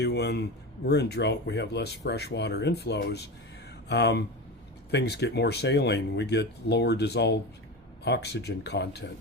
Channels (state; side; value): normal; both; correlation 0.24